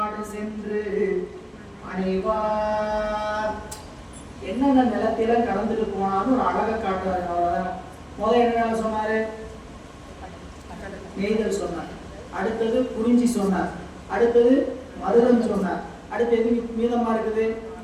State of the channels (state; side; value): identical; both; correlation 1.00